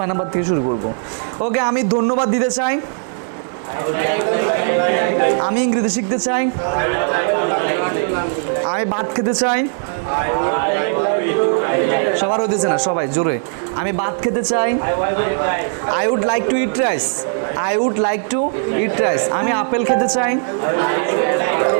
নাম্বার থেকে শুরু করবো। ওকে, আমি ধন্যবাদ দিতে চাই। আমি ইংরেজি শিখতে চাই। আমি ভাত খেতে চাই। সবার হতেছে না, সবাই জোরে। আমি ভাত খেতে চাই। I would like to eat rice. I would like to eat rice. আমি আপেল খেতে চাই।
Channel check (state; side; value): silent; left; digital silence